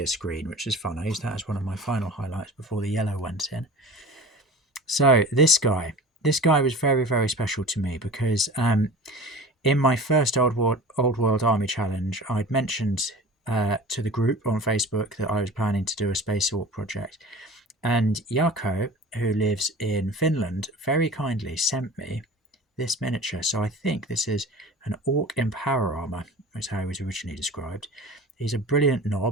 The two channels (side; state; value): both; normal; correlation 0.38